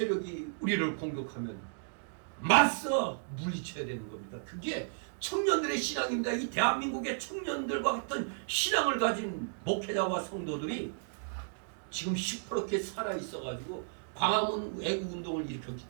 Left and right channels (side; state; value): left; silent; digital silence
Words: 우리를 공격하면 맞서 물리쳐야 되는 겁니다. 그게 청년들의 신앙입니다. 이 대한민국의 청년들과 같은 신앙을 가진 목회자와 성도들이 지금 시퍼렇게 살아있어가지고 광화문 애국운동을 일으켰기